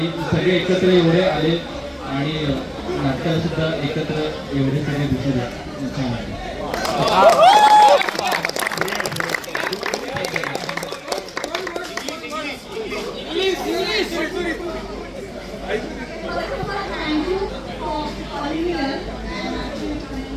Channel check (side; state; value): both; identical; correlation 1.00